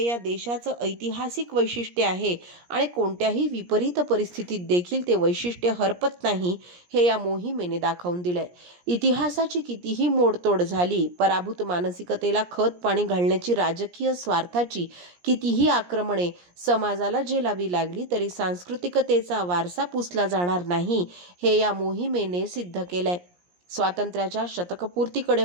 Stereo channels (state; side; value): late; left; 17 ms